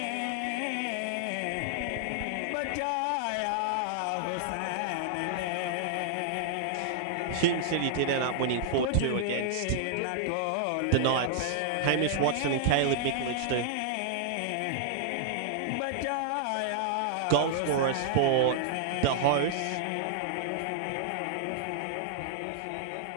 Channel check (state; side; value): different; both; correlation -0.01